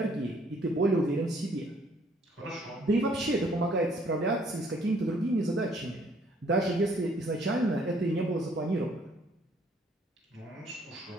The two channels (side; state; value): both; normal; correlation 0.63